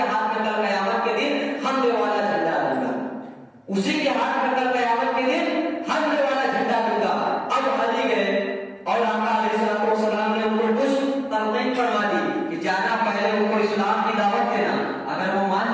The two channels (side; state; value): both; identical; correlation 1.00